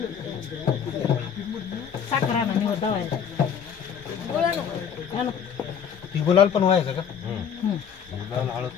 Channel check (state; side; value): quieter; right; 7.7 dB